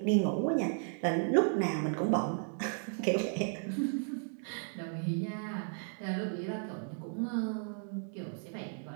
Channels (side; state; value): left; silent; 55 dB below the other